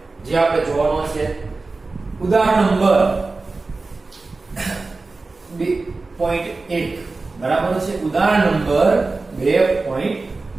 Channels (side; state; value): left; quieter; 3.6 dB